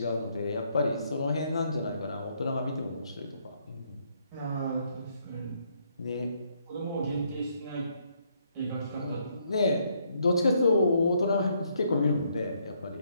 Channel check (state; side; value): inverted; both; correlation -0.72